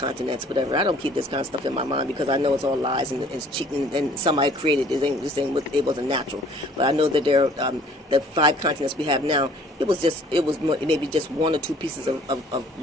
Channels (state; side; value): normal; both; correlation 0.55